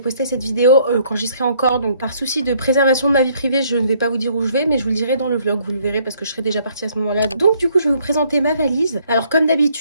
cette vidéo quand j'y serai encore. Donc par souci de préservation de ma vie privée, je ne vais pas vous dire où je vais, mais je vous le dirai dans le vlog, vous le verrez parce que je serai déjà partie à ce moment-là. Donc du coup je vais vous présenter ma valise. Alors comme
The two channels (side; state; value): both; inverted; correlation -0.65